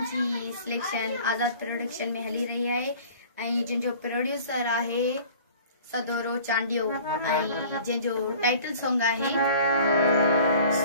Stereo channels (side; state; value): both; inverted; correlation -0.47